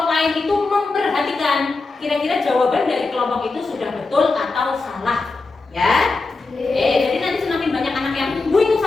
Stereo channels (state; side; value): quieter; right; 3.7 dB